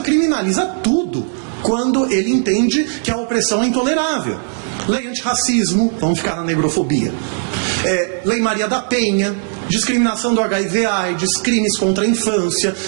criminaliza tudo quando ele entende que a opressão é intolerável. Lei antirracismo, vamos ficar na negrofobia. Lei Maria da Penha, discriminação do HIV/AIDS, crimes contra a infância,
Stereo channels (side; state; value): left; silent; digital silence